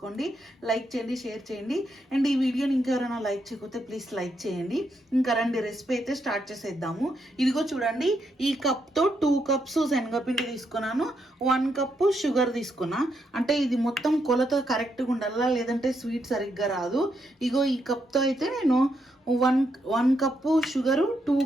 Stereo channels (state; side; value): normal; both; correlation 0.79